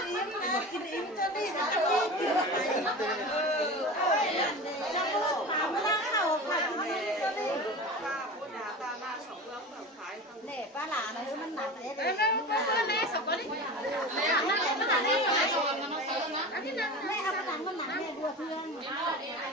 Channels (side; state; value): both; normal; correlation 0.31